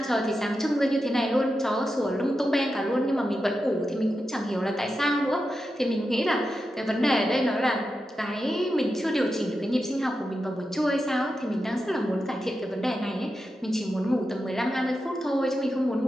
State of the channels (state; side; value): normal; both; correlation 0.89